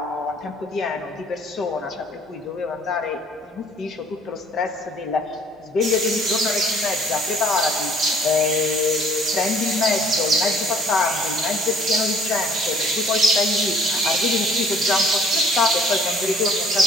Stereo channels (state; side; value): normal; both; correlation 0.57